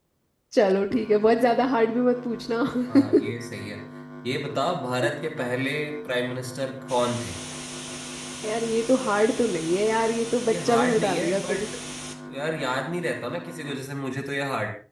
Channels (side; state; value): both; identical; correlation 1.00